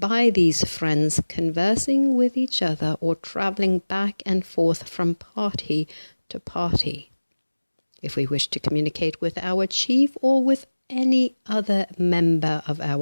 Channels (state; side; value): inverted; both; correlation -1.00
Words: these friends conversing with each other or travelling back and forth from party to party. If we wished to communicate with our chief or with any other member of